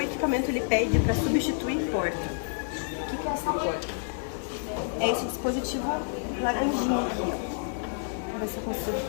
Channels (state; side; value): silent; right; digital silence